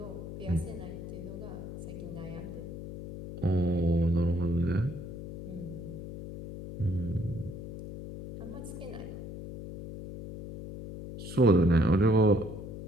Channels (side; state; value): left; noise; hum, 10 dB below the sound